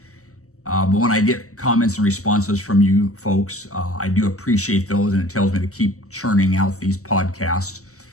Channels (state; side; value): late; right; 0.65 ms